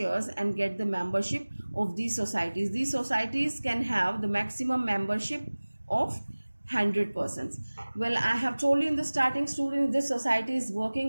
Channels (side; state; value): both; inverted; correlation -1.00